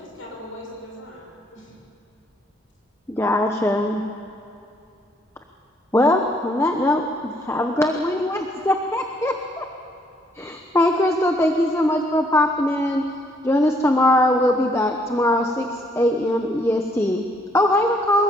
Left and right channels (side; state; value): both; normal; correlation 0.68